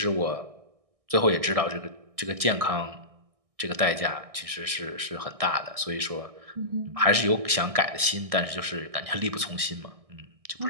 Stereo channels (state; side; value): late; left; 1.6 ms